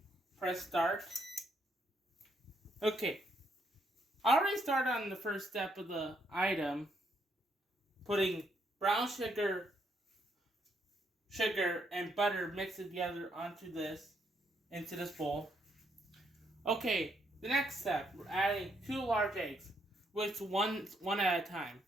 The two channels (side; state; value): both; normal; correlation 0.74